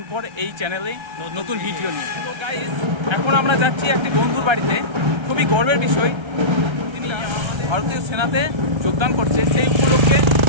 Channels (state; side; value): late; left; 1.3 ms